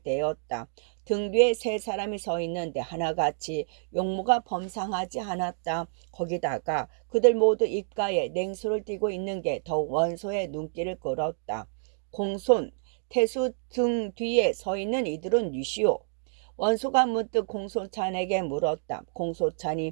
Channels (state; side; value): silent; left; digital silence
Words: 등 뒤에 세 사람이 서 있는데 하나같이 용무가 범상하지 않았다. 거기다가 그들 모두 입가에 냉수를 띠고 있는 게 더욱 원소의 눈길을 끌었다. 공손, 태수 등 뒤에 서 있는 이들은 누시오? 원소가 문득 공소찬에게 물었다.